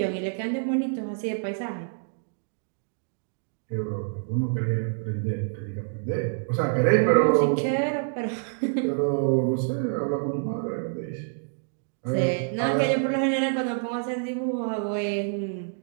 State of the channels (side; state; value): left; silent; digital silence